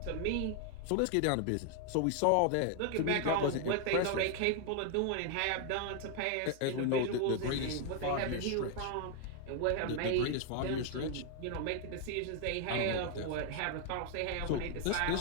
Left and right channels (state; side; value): different; both; correlation 0.00